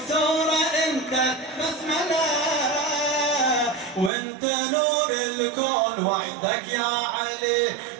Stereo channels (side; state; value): left; drops out; at 4.1 s